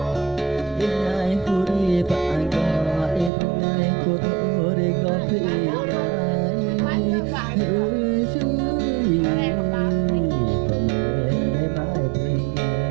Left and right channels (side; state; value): left; drops out; at 3.3 s